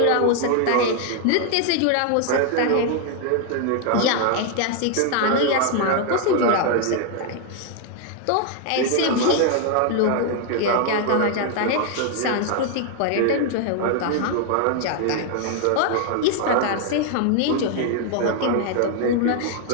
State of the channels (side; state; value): both; different; correlation 0.00